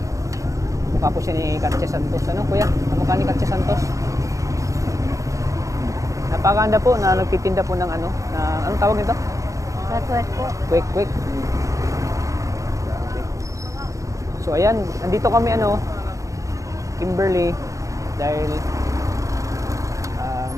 Kamukha po siya ni Katya Santos. Kuya? Kamukha ni Katya Santos. Napakaganda po na nagtitinda po ng anong tawag nito? Kwek po. Kwek. So ayan, nandito kami Kimberly, dahil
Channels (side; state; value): left; late; 0.16 ms